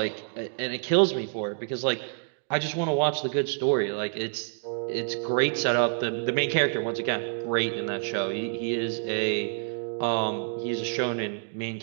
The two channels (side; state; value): left; silent; digital silence